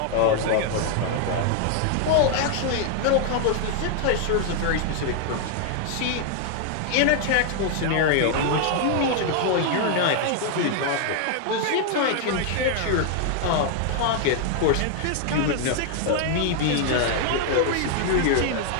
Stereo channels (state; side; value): different; both; correlation 0.00